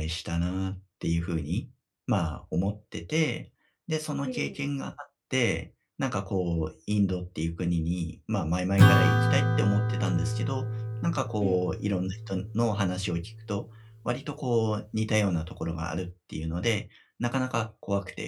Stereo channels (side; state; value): both; identical; correlation 1.00